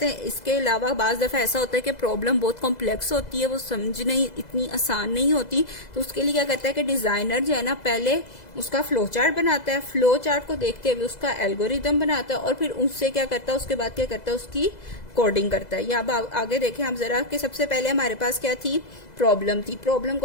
हैं इसके अलावा बाज दफा ऐसा होता है कि प्रॉब्लम बहुत कॉम्प्लेक्स होती है, वो समझने इतनी आसान नहीं होती, तो उसके लिए क्या करता है कि डिजाइनर जो है ना, पहले उसका फ्लो चार्ट बनाता है, फ्लो चार्ट को देखते हुए उसका एल्गोरिदम बनाता है और फिर उससे क्या करता है, उसके बाद क्या करता है, उसकी कोडिंग करता है। या अब आगे देखें हम जरा कि सबसे पहले हमारे पास क्या थी, प्रॉब्लम थी। प्रॉब्लम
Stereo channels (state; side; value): late; right; 2.0 ms